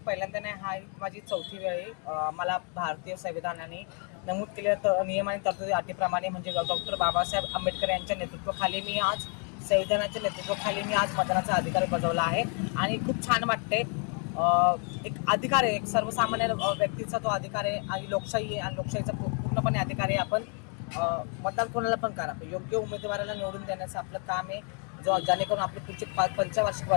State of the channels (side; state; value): right; quieter; 39.4 dB